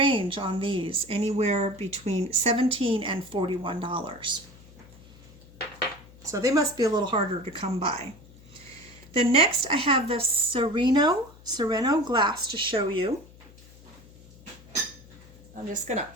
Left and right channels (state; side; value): noise; left; hum, 23 dB below the sound